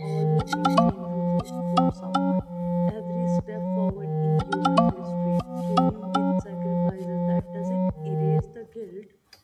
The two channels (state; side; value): identical; both; correlation 1.00